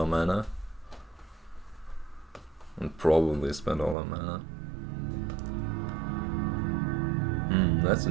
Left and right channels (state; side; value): drops out; left; at 4.0 s